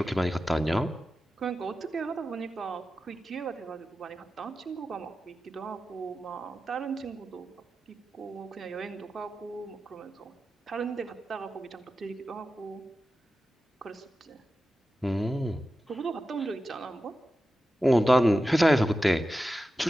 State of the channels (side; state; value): both; normal; correlation 0.92